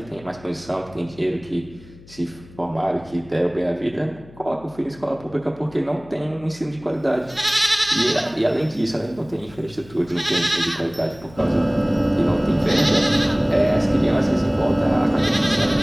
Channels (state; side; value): noise; left; hum, 22 dB below the sound